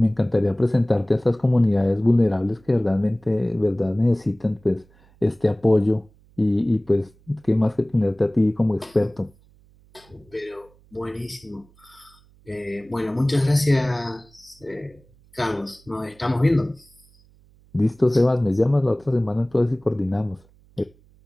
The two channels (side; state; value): right; noise; hum, 30 dB below the sound